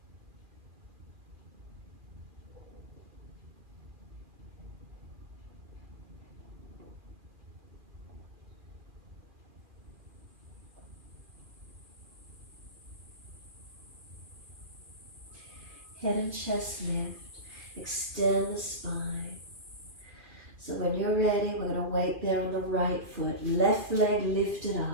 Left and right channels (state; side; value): late; left; 2.4 ms